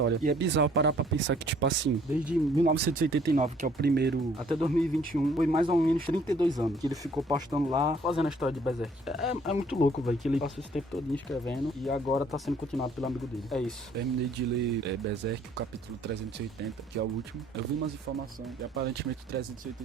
E é bizarro parar pra pensar que, tipo assim, desde 1989, que é o primeiro, até 2021, foi mais ou menos 32 anos que ele ficou postando lá, fazendo a história de Berserk. É muito louco, velho, que ele passou esse tempo todo escrevendo e agora tá sendo continuado pelo amigo dele. É isso. Terminei de ler Berserk, o capítulo 380, que é o último. Eu vi umas informações e aparentemente o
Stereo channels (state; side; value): normal; both; correlation 0.60